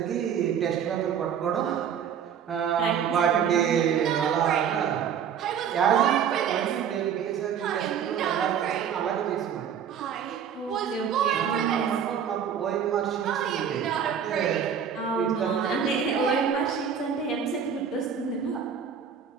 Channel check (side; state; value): left; quieter; 7.9 dB